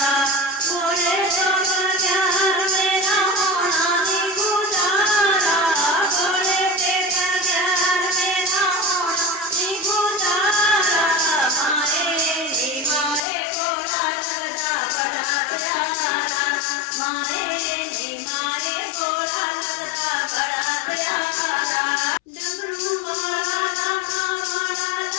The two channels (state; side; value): drops out; right; at 13.2 s